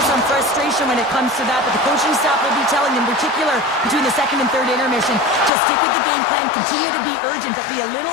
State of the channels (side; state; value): right; drops out; at 5.5 s